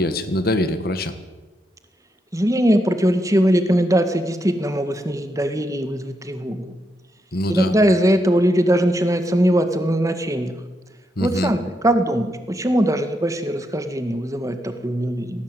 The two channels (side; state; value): both; normal; correlation 0.81